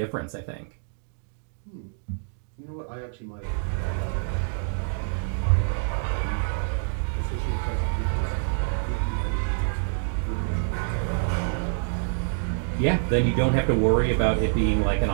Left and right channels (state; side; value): silent; left; 61 dB below the other